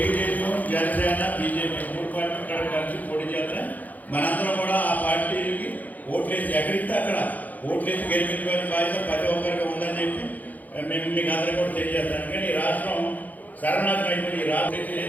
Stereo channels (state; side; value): late; right; 0.081 ms